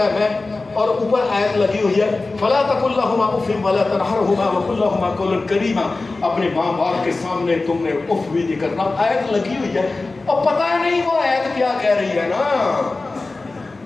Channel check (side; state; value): right; quieter; 3.5 dB